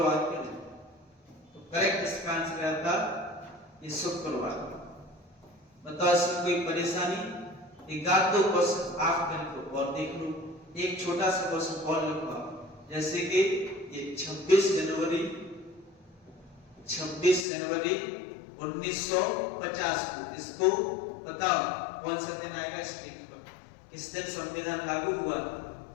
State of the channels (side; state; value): right; drops out; at 17.4 s